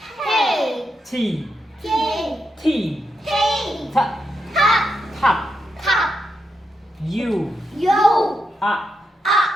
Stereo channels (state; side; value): normal; both; correlation 0.84